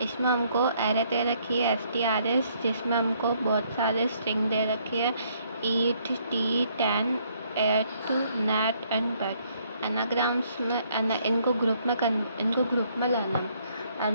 इसमें हमको एरे दे रखी है STRS, जिसमें हमको बहुत सारे स्ट्रिंग दे रखी है eat, tea, tan, ate, nat and bat. Anagrams में इनको ग्रुप में लाना है।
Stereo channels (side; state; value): both; inverted; correlation -0.68